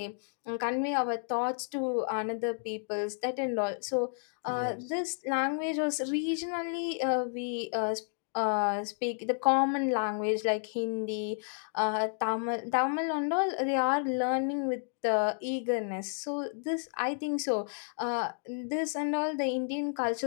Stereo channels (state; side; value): silent; right; digital silence